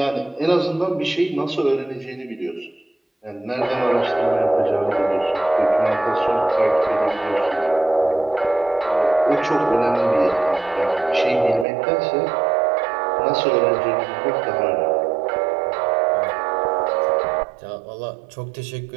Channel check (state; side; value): drops out; left; at 11.7 s